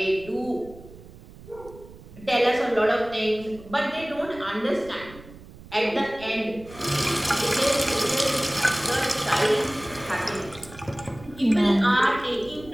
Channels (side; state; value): right; noise; rumble, 19 dB below the sound